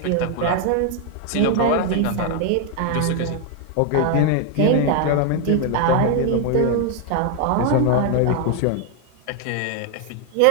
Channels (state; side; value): different; both; correlation 0.00